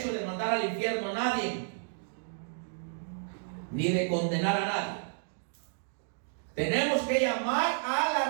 de mandar al infierno a nadie, ni de condenar a nadie. Tenemos que llamar al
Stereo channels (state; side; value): silent; left; digital silence